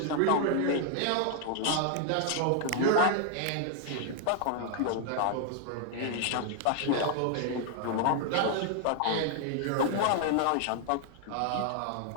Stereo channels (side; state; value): both; different; correlation 0.00